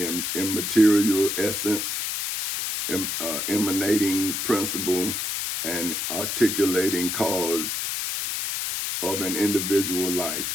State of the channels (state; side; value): noise; left; hiss, 2 dB below the sound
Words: immaterial essence, emanating principle, and articulating cause of an individual